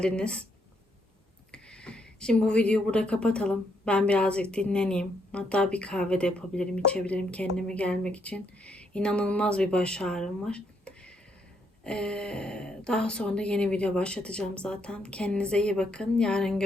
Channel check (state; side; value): normal; both; correlation 0.75